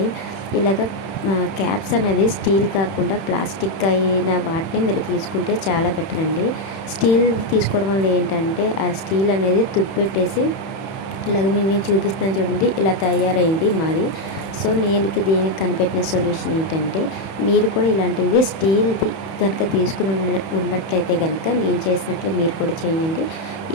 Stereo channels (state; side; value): late; right; 31 ms